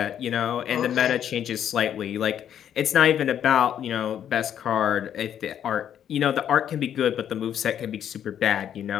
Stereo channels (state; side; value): quieter; right; 9.7 dB